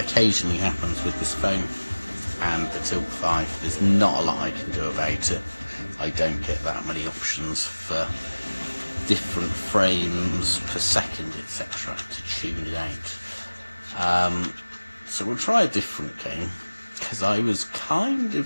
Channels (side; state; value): both; inverted; correlation -1.00